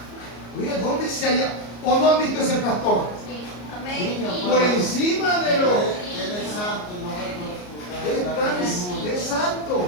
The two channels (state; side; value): late; right; 34 ms